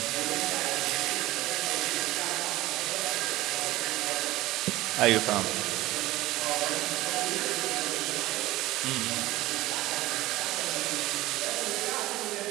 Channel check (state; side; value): quieter; left; 17.7 dB